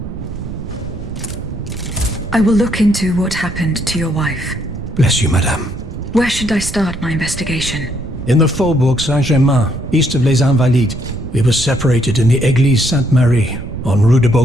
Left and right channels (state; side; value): noise; right; rumble, 9 dB below the sound